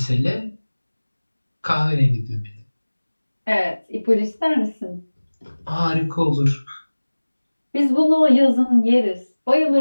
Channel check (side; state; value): both; inverted; correlation -1.00